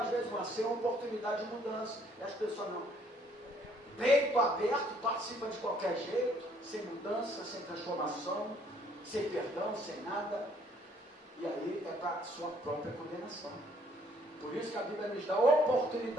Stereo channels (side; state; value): both; normal; correlation 0.64